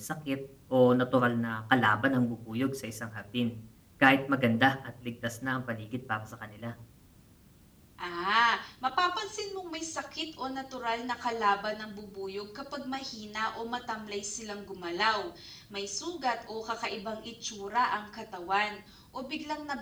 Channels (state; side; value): identical; both; correlation 1.00